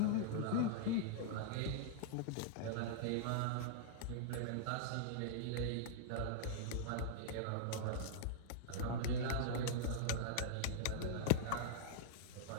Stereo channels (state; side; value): different; both; correlation -0.02